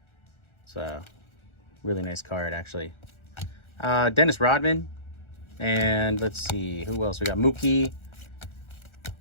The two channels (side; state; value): right; late; 1.4 ms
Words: It's a really nice card, actually. Dennis Rodman. And let's see. Who else? We got Mookie.